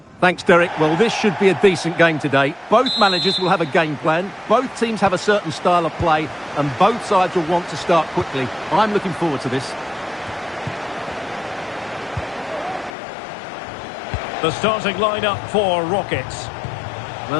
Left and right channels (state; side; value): drops out; right; at 12.9 s